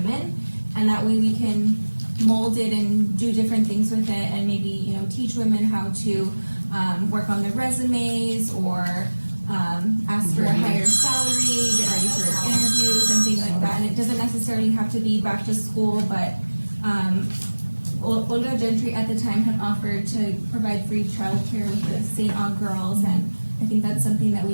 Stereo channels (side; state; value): both; inverted; correlation -1.00